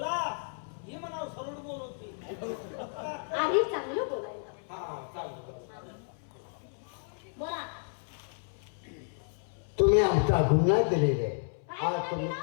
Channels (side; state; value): right; silent; 56 dB below the other